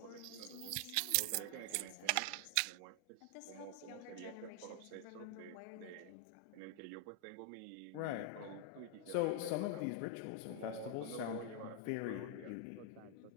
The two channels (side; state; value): both; different; correlation 0.00